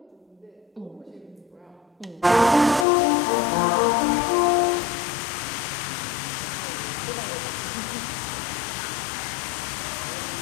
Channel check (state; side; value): drops out; right; at 2.9 s